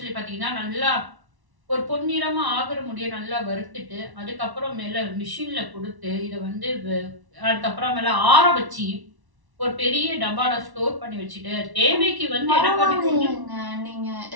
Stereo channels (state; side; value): late; left; 1.1 ms